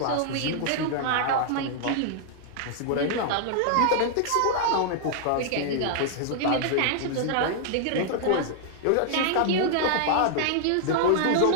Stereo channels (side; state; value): both; different; correlation -0.01